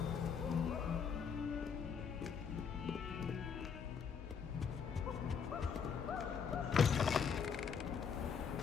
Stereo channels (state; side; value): quieter; right; 6.6 dB